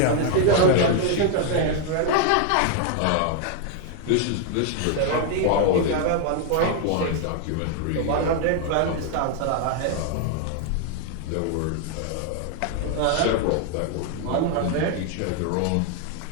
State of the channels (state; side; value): different; both; correlation 0.00